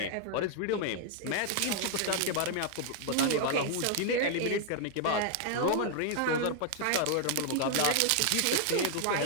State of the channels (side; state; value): both; different; correlation 0.00